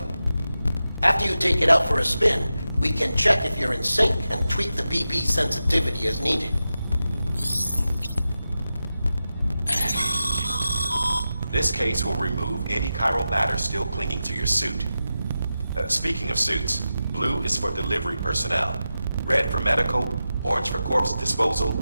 After you take it out for a spin, we can check if you're in sync and tweak the BB sensitivity as needed. This case will remove any chiral matter still clinging to your suit. Speaking of suits, blue is for delivery personnel, red for medical, orange for corpse disposal,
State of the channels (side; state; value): both; inverted; correlation -0.92